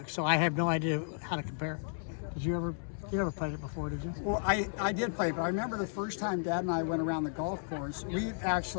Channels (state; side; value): silent; right; digital silence